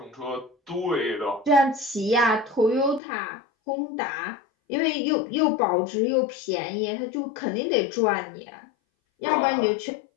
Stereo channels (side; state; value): right; drops out; at 3.0 s